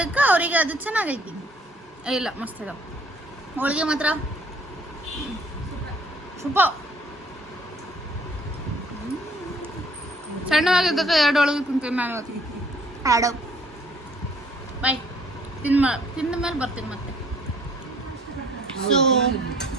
ಅವರಿಗೆ ಅದು ಚೆನ್ನಾಗೈತಿ. ಇಲ್ಲ, ಮಸ್ತ್ ಇದಾವ ಹೋಳಿಗೆ ಮಾತ್ರ ಸೂಪರ್. ಸಣ್ಣವಾಗಿದ್ದಕ್ಕ 2 ಹೋಳಿಗೆ ತಿಂತೀನಿ ನಾನು. ಆಡೋ ಬಾಯ್, ತಿಂದ ಮೇಲೆ ಬರ್ತೀನಿ ಮತ್ತೆ. So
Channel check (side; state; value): both; normal; correlation 0.59